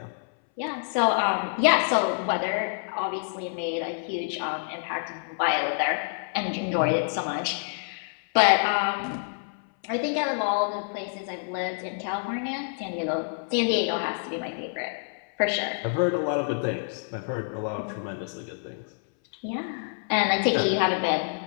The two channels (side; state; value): right; silent; 60 dB below the other